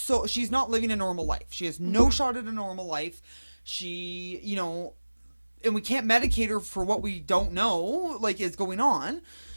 she's not living a normal life. She has no shot at a normal life. She, you know, and we can't medicate her for what we don't know like is going on.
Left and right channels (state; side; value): inverted; both; correlation -1.00